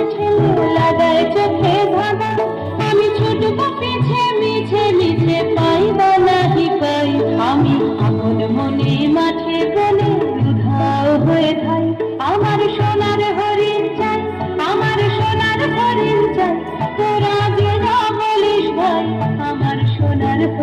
ঠেলে লাগায় চোখে ধাঁধা। আমি ছুটব পিছে মিছে মিছে পাই বা নাহি পাই, আমি আপন মনে মাঠে বলে উধাও হয়ে থাই, আমার সোনার হরিণ চাই, আমার সোনার হরিণ চাই, তোরা যে যা বলিস ভাই আমার সোনার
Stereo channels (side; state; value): both; identical; correlation 1.00